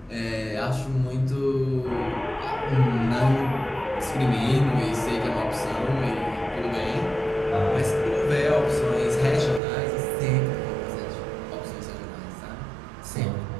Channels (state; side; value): drops out; left; at 9.6 s